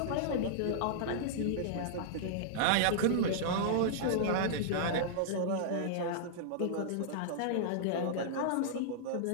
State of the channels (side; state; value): both; different; correlation -0.02